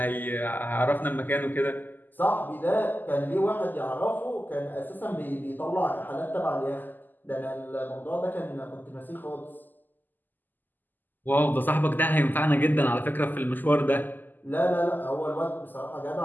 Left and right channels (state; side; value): late; right; 0.087 ms